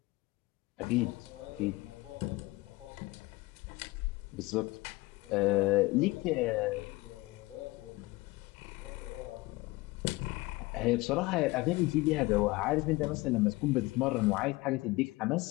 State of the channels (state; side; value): quieter; right; 21.8 dB